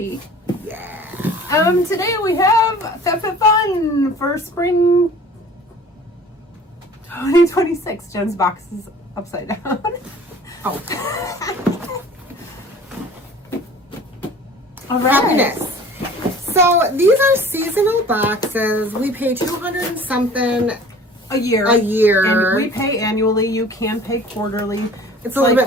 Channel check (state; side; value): normal; both; correlation 0.46